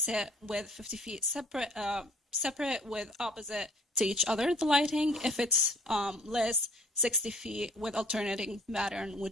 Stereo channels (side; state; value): both; normal; correlation 0.56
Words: it with 50 feet separate with opposite to each other, the lighting. If it's less, 60 feet with alternating pattern